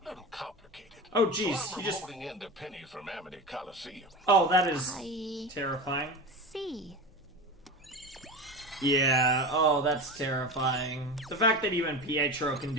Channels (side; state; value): both; normal; correlation 0.26